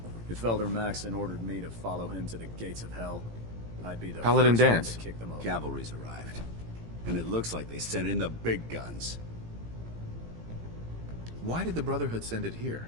If Elder Maxon ordered me to follow him to the gates of hell, I'd be the Paladin first one Danse. to kick them over. Cavalry's arrived. And it looks like they sent in the big guns. Why did the Brotherhood send it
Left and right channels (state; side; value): late; left; 18 ms